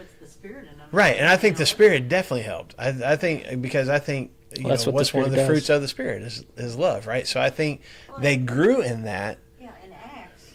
the Spirit in them. Right. And I think the Spirit definitely helped. I think because I think, Well, that's what the what's one of the Spirit fruits does. of the Spirit is love, right? So I think they grew in that. Yeah, in Acts,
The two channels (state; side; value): identical; both; correlation 1.00